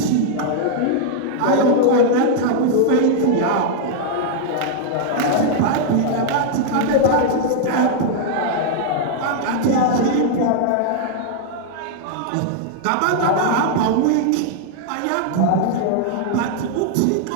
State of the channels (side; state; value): both; different; correlation 0.00